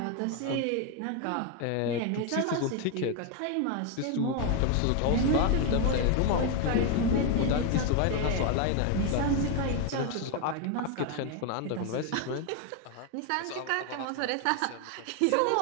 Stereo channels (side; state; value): both; different; correlation 0.01